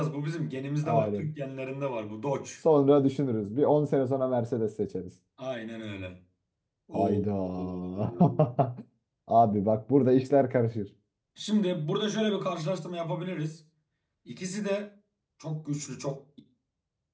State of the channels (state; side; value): identical; both; correlation 1.00